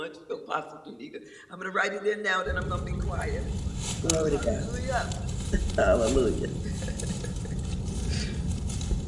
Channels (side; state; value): both; identical; correlation 1.00